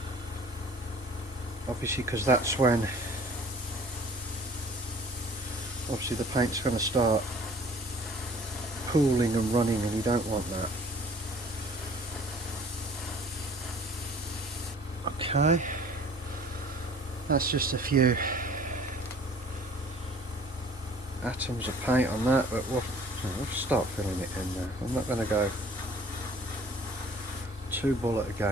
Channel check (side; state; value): both; normal; correlation 0.51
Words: Obviously, because that's when obviously the paint's going to start pooling and running, and you don't want that. Okay, that's just a few atoms of paint on that, but we'll start filling it in there. I'm not going to go too bull at a